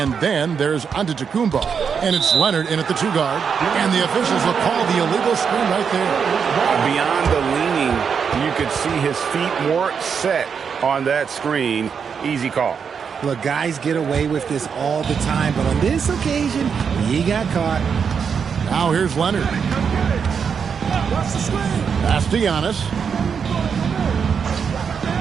then there's Antetokounmpo. And it's Leonard in at the 2-guard. And the officials will call the illegal screen right there. Beyond the leaning, you could see his feet weren't set on that screen. Easy call. Look, guys get away with this all the time, but on this occasion, he got caught. Now here's Leonard. Pass to Giannis.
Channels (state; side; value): quieter; left; 6.6 dB